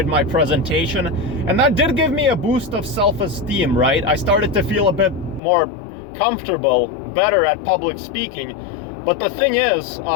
my presentation, and that did give me a boost of self-esteem, right? I started to feel a bit more comfortable, better at public speaking. But the thing is,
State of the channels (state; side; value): drops out; right; at 5.4 s